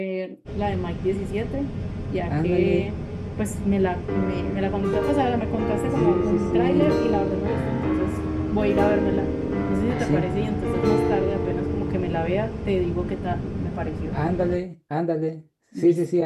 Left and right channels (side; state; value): both; identical; correlation 1.00